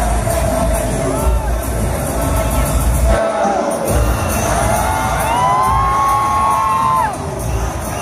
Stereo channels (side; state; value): both; identical; correlation 1.00